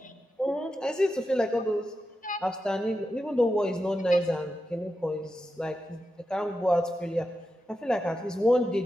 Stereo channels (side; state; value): both; normal; correlation 0.89